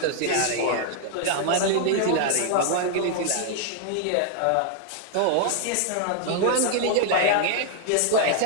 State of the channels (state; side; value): different; both; correlation 0.00